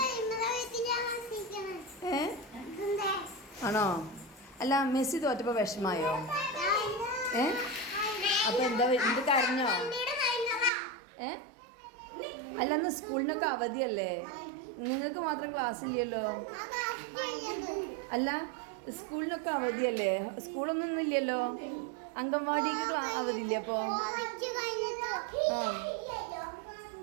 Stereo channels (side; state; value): left; drops out; at 10.7 s